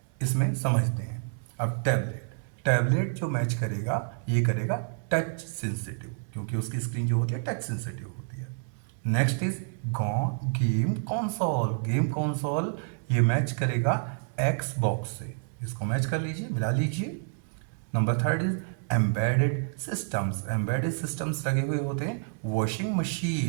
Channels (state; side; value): silent; left; 59 dB below the other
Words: इसमें समझते हैं. अब टैबलेट जो मैच करेगा ये करेगा टच सेंसिटिव, क्योंकि उसकी स्क्रीन जो होती है टच सेंसिटिव होती है. नेक्स्ट इज गेम कंसोल ये मैच करेगा Xbox से. इसको मैच कर लीजिए, मिला लीजिए. नंबर 3 इज एम्बेडेड सिस्टम्स लगे हुए होते हैं वॉशिंग